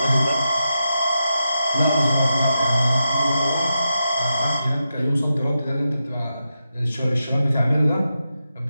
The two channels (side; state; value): both; inverted; correlation -0.88